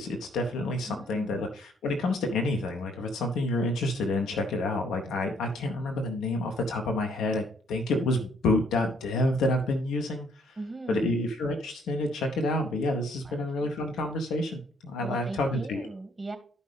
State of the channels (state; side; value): normal; both; correlation 0.65